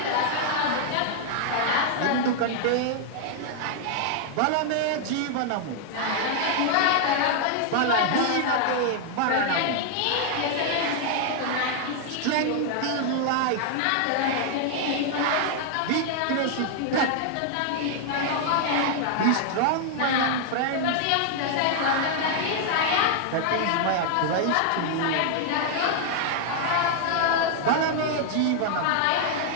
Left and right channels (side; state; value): both; different; correlation 0.00